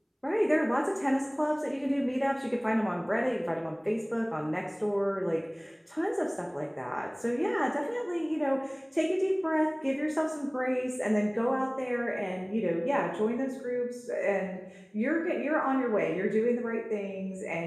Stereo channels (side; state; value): both; identical; correlation 1.00